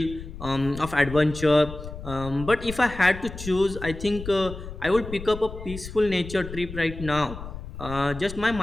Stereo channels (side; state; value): left; noise; rumble, 11 dB below the sound